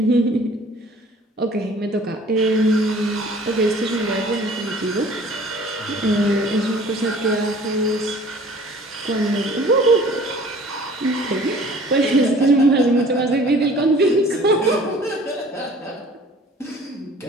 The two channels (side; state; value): both; normal; correlation 0.50